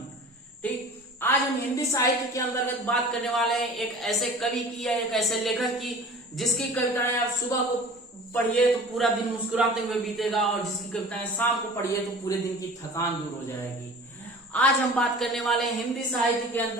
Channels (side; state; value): both; normal; correlation 0.42